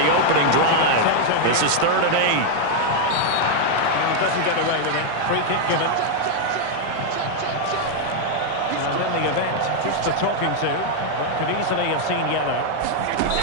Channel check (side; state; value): both; different; correlation 0.00